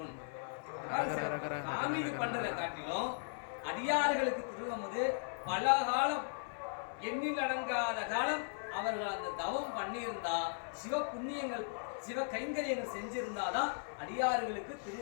சாமிக்கு பண்றதை காட்டிலும் அடியார்களுக்கு திருவமுது பல காலம் எண்ணில் அடங்காத காலம் அவர்கள் அந்த தவம் பண்ணியிருந்தா சிவ புண்ணியங்கள் சிவ கைங்கரியங்கள் செஞ்சிருந்தாதான் அடியார்களுக்கு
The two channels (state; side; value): silent; right; 53 dB below the other